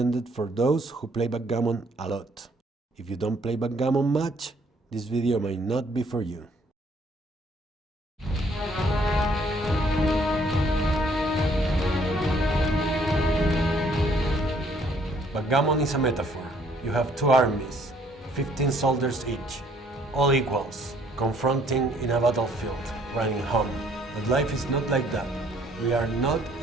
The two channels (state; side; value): normal; both; correlation 0.63